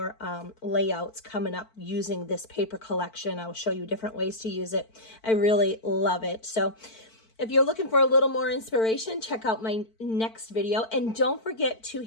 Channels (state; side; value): late; right; 4.5 ms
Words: layouts coming up using this paper collection. I will show you different ways to use it. I really love it. So if you're looking for a little more inspiration, check out my next video. And don't forget to